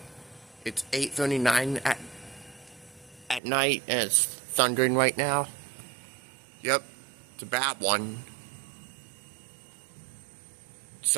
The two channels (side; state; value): left; drops out; at 3.4 s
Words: It's 8:39 at night, and it's thundering right now. Yep, it's a bad one.